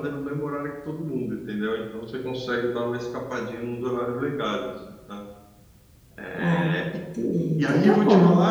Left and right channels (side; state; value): both; identical; correlation 1.00